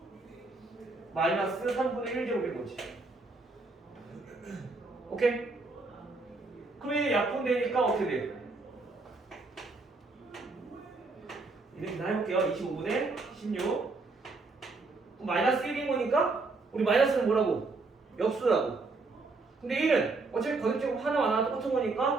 마이너스 3분의 1제곱인 거지. 오케이? 그럼 이제 약분되니까 어떻게 돼? 이렇게 해볼게요. 25분의 16 마이너스 1인 거니까 우리 마이너스는 뭐라고? 역수라고. 근데 1은 어차피 거듭제곱 하나만 똑같은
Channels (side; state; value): left; quieter; 3.6 dB